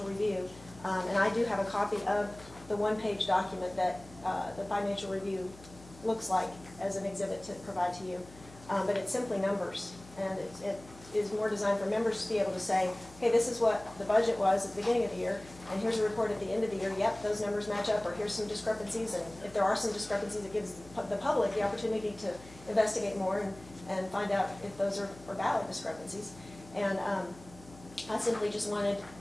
review. And I do have a copy of the one-page document that the financial review looks like as an exhibit to provide to you. But it's simply numbers, and it is more designed for members to be able to say, hey, this is what the budget was at the beginning of the year, and here's a report at the end of the year, yep, those numbers match up, or here's some discrepancies, and if there are some discrepancies, it gives the public the opportunity to investigate more and find out if those are valid discrepancies. And I simply just wanted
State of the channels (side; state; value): left; noise; hum, 20 dB below the sound